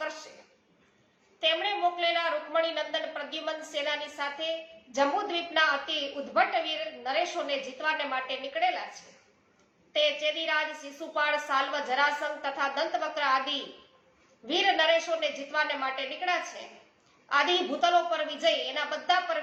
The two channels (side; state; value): both; identical; correlation 1.00